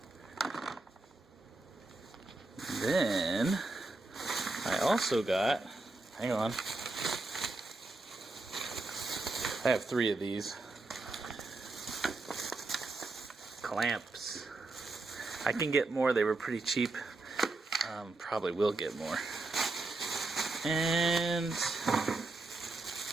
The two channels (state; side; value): quieter; left; 3.2 dB